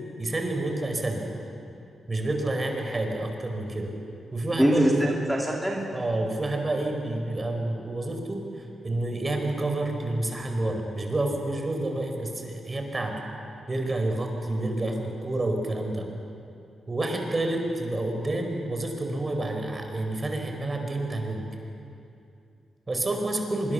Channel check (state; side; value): normal; both; correlation 0.91